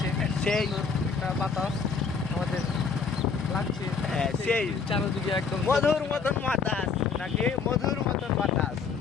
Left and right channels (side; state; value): right; quieter; 5.4 dB